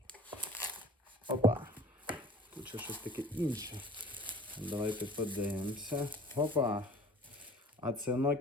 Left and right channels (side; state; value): both; normal; correlation 0.46